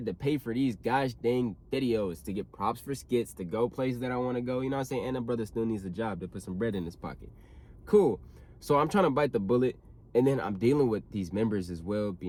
to pay for these gosh dang videos, to get props for skits, to go places that I want to go. You know what I'm saying? And the brother still needs a job to put some bread in his pocket. Cool. So I'm trying to bite the bullet, and then I'm dealing with these members as well,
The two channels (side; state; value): both; identical; correlation 1.00